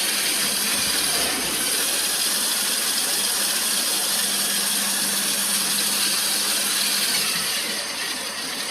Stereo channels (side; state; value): both; identical; correlation 1.00